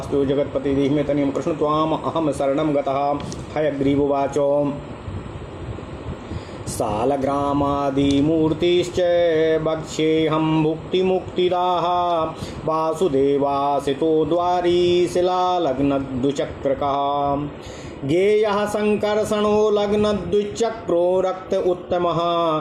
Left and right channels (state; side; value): identical; both; correlation 1.00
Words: जगतपति देहि में तनियम कृष्ण त्वाम अहम शरणं गतः हयग्रीवोवाच सालग्रामादिमूर्तिश्च वक्ष्येऽहं भुक्तिमुक्तिदाः वासुदेवासितो द्वारी शिलालग्नद्विचक्रकः गेयः संकर्षणो लग्नद्विचक्रो रक्त उत्तमः